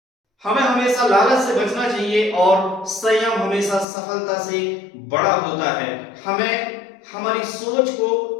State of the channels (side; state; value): right; drops out; at 3.9 s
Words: हमें हमेशा लालच से बचना चाहिए और संयम हमेशा सफलता से बड़ा होता है। हमें हमारी सोच को